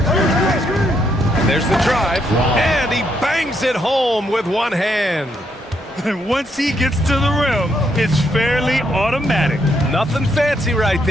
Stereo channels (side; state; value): both; normal; correlation 0.76